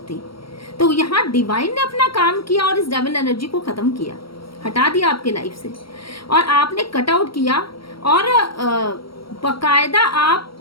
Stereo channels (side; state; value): right; late; 0.74 ms